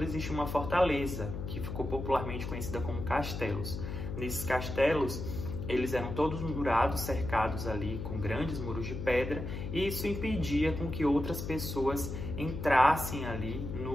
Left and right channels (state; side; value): noise; left; hum, 6 dB below the sound